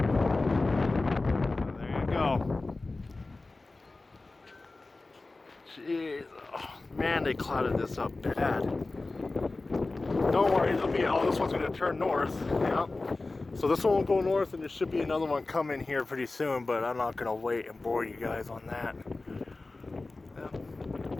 Oh, there you go. Jeez. Oh, man, they clouded this up bad. Don't worry, there'll be, oh, this one's going to turn north. Yep. So this one will go north, and there should be another one coming here pretty soon, but I'm not going to wait and bore you guys on that. Yep.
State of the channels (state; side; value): quieter; right; 3.3 dB